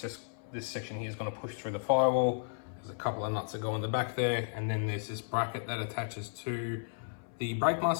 just this section here is going to push through the firewall. There's a couple of nuts that go in the back there, and then there's this bracket that attaches to the brake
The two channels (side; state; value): right; silent; 55 dB below the other